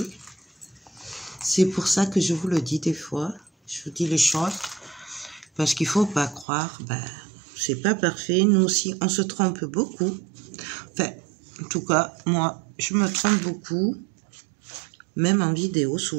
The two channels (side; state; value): left; drops out; at 6.5 s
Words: C'est pour ça que je vous le dis des fois. Je vous dis les choses. Parce qu'il ne faut pas croire. Ben, c'est pas parfait. Nous aussi, on se trompe beaucoup. Enfin, en tout cas, moi, je me trompe beaucoup. Même en vidéo,